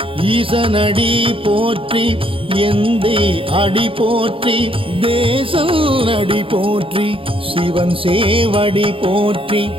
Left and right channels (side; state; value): left; late; 0.26 ms